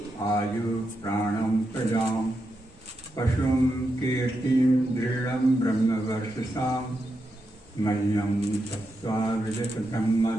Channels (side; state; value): both; normal; correlation 0.85